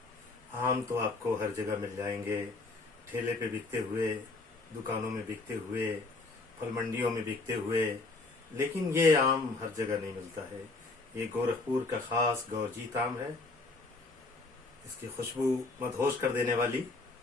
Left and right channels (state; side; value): quieter; right; 3.4 dB